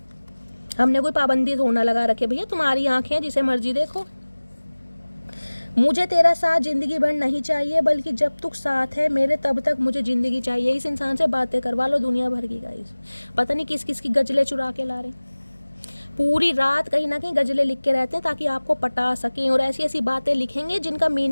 हमने कोई पाबंदी थोड़ा लगा रखे भैया, तुम्हारी आंखें जिसे मर्जी देखो। मुझे तेरा साथ ज़िंदगी भर नहीं चाहिए, बल्कि जब तक साथ है मेरे तब तक मुझे ज़िंदगी चाहिए। इस इंसान से बातें करवा लो दुनिया भर की गाइस, पता नहीं किस किस की गजलें चुरा के ला रहे हैं। पूरी रात कहीं ना कहीं गजलें लिख के रहते हैं ताकि आपको पटा सकें, और ऐसी ऐसी बातें लिखेंगे जिनका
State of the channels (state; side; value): inverted; both; correlation -1.00